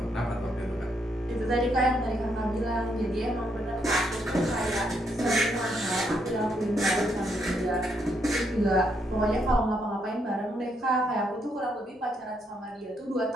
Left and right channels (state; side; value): normal; both; correlation 0.75